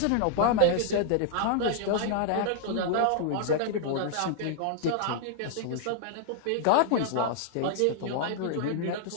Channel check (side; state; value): both; different; correlation -0.01